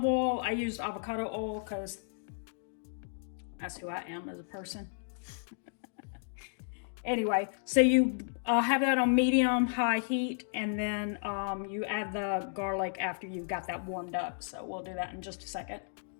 oil. I used avocado oil because that's who I am as a person. Anyway, so you have that on medium high heat, and then you add the garlic after you've got that warmed up. So we'll do that in just a second.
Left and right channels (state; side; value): silent; right; digital silence